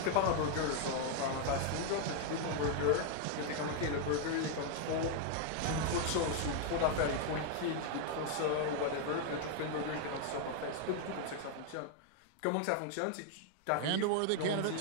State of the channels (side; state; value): both; different; correlation 0.00